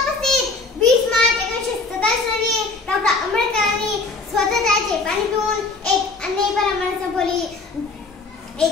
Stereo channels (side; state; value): right; quieter; 3.8 dB